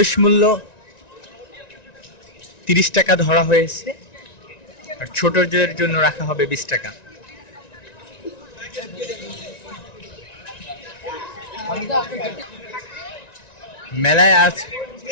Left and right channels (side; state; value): right; late; 1.9 ms